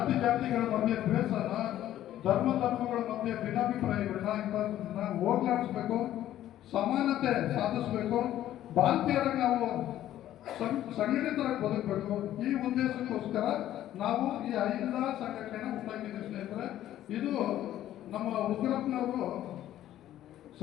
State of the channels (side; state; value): right; quieter; 12.7 dB